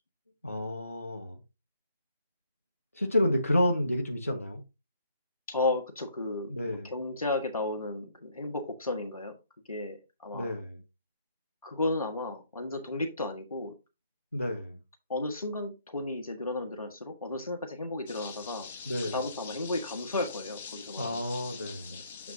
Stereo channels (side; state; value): both; inverted; correlation -0.67